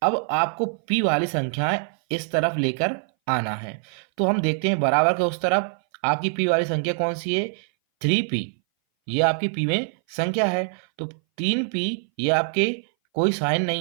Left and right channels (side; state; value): left; silent; 59 dB below the other